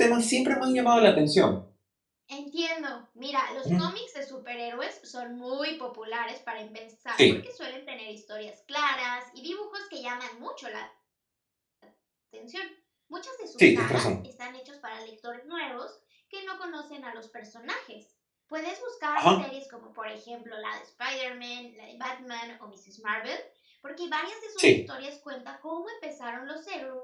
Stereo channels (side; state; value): both; identical; correlation 1.00